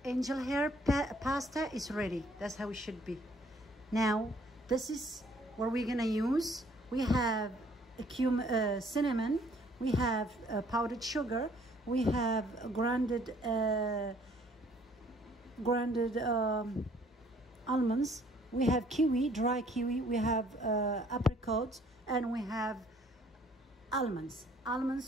angel hair pasta is ready. That's how it should be. Now This is what we're gonna use. We have cinnamon, we have powdered sugar, we have grounded almonds, we have kiwi, dry kiwi, we have apricots, and we have almonds.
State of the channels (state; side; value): normal; both; correlation 0.60